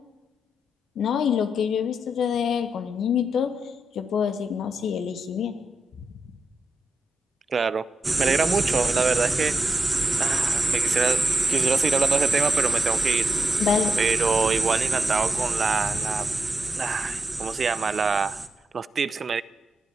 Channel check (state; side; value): normal; both; correlation 0.87